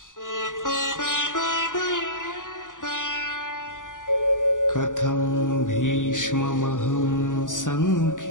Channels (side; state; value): right; late; 0.88 ms